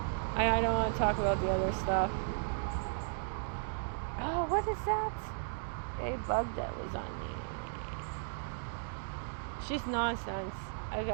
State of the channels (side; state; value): left; silent; digital silence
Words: I don't want to talk about the other stuff. Oh, what is that? A bug that was on me. It's just nonsense,